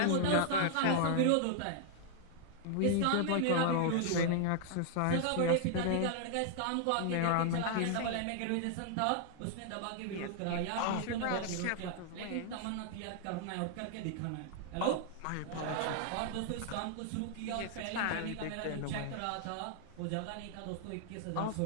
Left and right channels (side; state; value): both; different; correlation -0.01